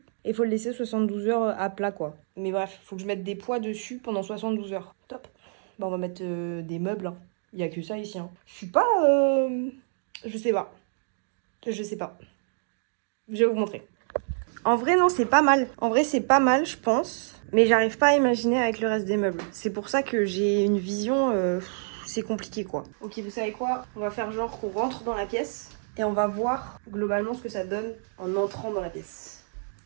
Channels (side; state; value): left; silent; digital silence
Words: Et il faut le laisser 72 heures à plat, quoi. Mais bref, il faut que je mette des poids dessus pendant 72 heures. Top. Bah, on va mettre des meubles. Hein. Il n'y a que ça ici. Hein. Je suis pas... Je sais pas. Je sais pas. Je vais vous montrer. En vrai, non, c'est pas mal. En vrai, c'est pas mal, je pense. Mais j'arrive pas à imaginer avec le reste des meubles. C'est pour ça que j'ai une vision... c'est compliqué, quoi. Ok, vous savez quoi? On va faire genre qu'on rentre dans la pièce. Et on va voir globalement ce que ça donne en entrant dans la pièce.